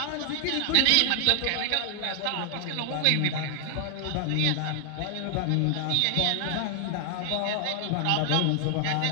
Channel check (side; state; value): both; different; correlation 0.00